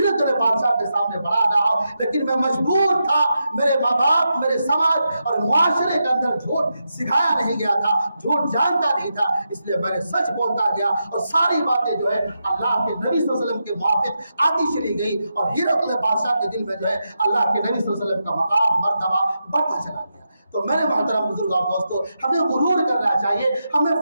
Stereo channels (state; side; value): inverted; both; correlation -0.86